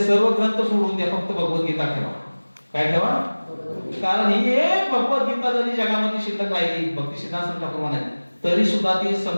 ग्रंथ सोडून द्या, फक्त भगवद्गीता ठेवा. काय ठेवा? कारण ही एक भगवद्गीता जरी जगामध्ये शिल्लक राहिली, भक्ती सिद्धांत ठाकूर म्हणाले, तरी सुद्धा ती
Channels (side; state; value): both; inverted; correlation -1.00